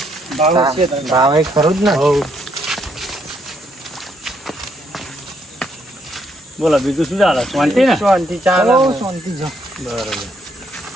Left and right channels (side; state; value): both; normal; correlation 0.73